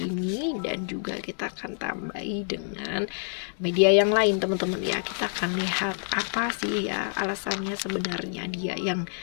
dan juga kita akan tambahi dengan media yang lain teman-teman ya. Kita akan lihat apa sih ya alasannya sebenarnya dia yang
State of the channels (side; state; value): right; silent; 60 dB below the other